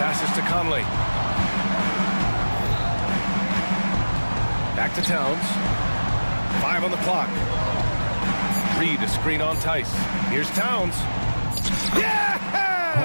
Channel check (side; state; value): both; inverted; correlation -1.00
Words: to Conley. Back to Towns. 5 on the clock. Reed, a screen on Tice. Here's Towns. Yes!